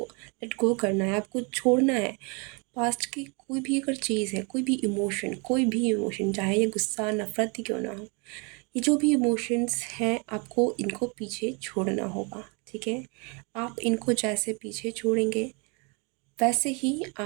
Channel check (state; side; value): quieter; left; 32.3 dB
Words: लेट गो करना है, आपको छोड़ना है। पास्ट की कोई भी अगर चीज़ है, कोई भी इमोशन, चाहे ये गुस्सा, नफ़रत ही क्यों ना हो, ये जो भी इमोशंस हैं, आपको इनको पीछे छोड़ना होगा, ठीक है? आप इनको जैसे पीछे छोड़ेंगे वैसे ही